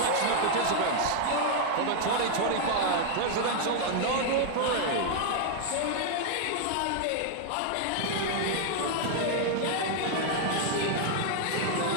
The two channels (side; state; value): both; different; correlation 0.00